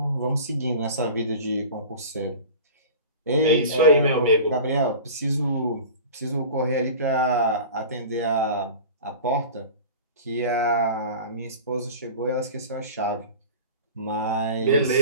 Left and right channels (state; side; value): inverted; both; correlation -0.37